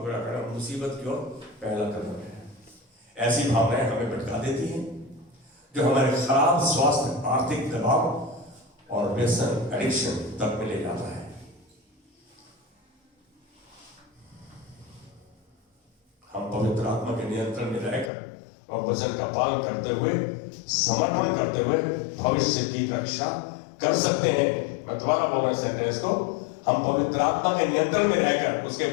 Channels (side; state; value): right; drops out; at 18.1 s